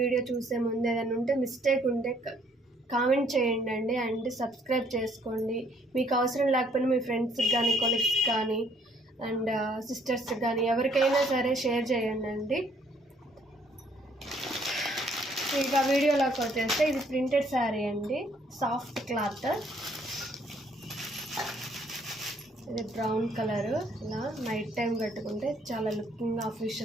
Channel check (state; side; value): normal; both; correlation 0.65